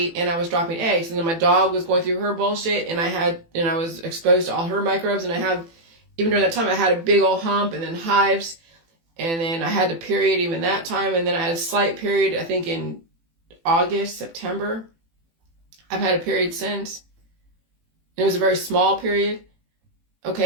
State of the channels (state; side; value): late; left; 18 ms